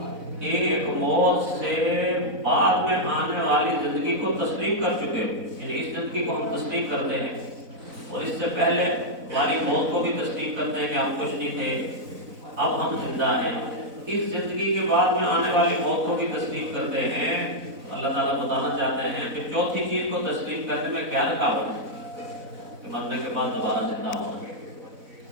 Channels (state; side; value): late; left; 4.0 ms